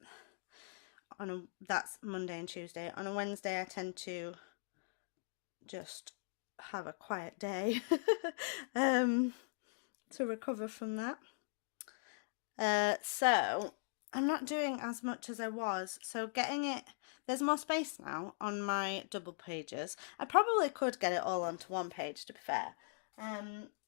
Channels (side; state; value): right; silent; digital silence